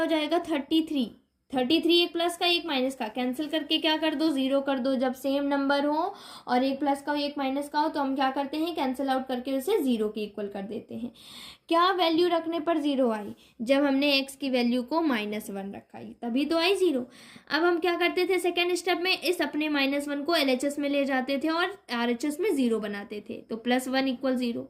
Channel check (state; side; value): identical; both; correlation 1.00